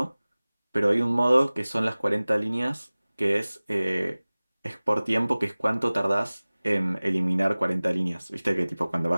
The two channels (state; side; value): inverted; both; correlation -0.99